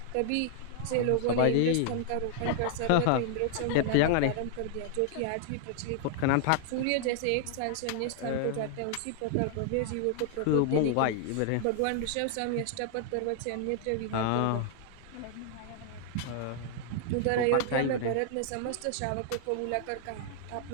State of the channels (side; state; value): both; different; correlation 0.00